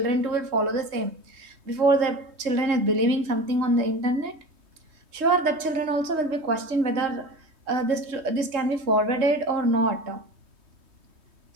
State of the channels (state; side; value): late; left; 3.2 ms